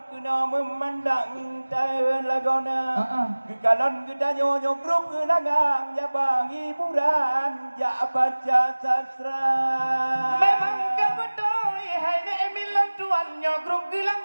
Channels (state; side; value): inverted; both; correlation -1.00